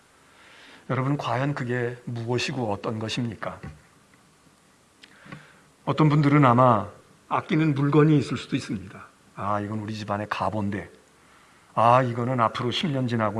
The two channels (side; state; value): both; identical; correlation 1.00